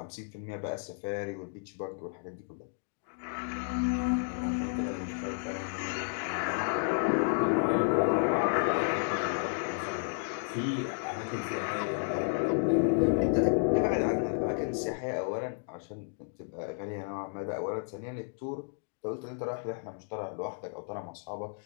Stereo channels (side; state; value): right; silent; digital silence